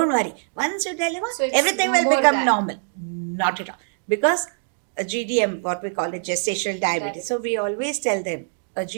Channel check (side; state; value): left; silent; digital silence